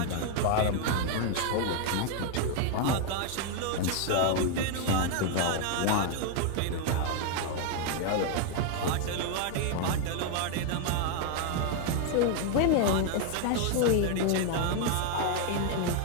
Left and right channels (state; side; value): different; both; correlation 0.00